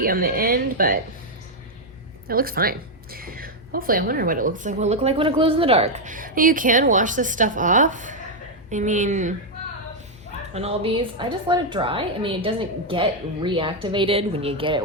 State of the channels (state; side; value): normal; both; correlation 0.01